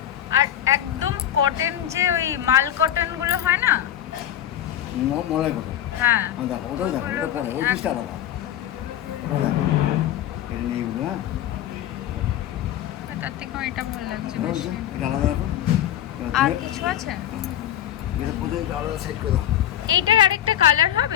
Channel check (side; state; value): right; quieter; 11.5 dB